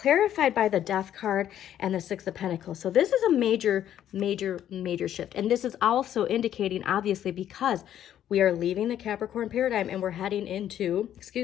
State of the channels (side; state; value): right; quieter; 10.9 dB